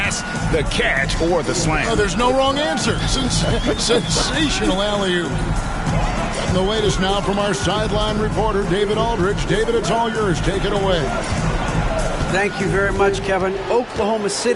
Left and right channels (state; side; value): identical; both; correlation 1.00